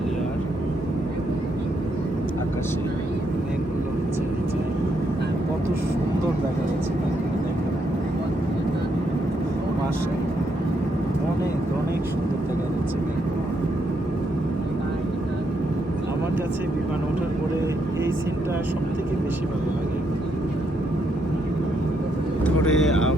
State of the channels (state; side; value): normal; both; correlation 0.77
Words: আকাশে মেঘগুলো হচ্ছে নিচে, কত সুন্দর দেখা যাচ্ছে মেঘগুলো, দেখেন পাশে অনেক অনেক সুন্দর দেখা যাচ্ছে মেঘগুলো। আমার কাছে বিমান ওঠার পরে এই সিনটা সব থেকে বেশি ভালো লাগে। ধরে